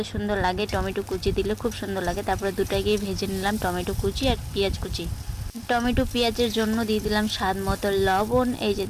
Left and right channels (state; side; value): identical; both; correlation 1.00